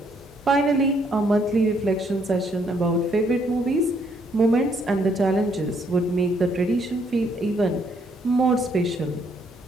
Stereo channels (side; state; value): both; normal; correlation 0.70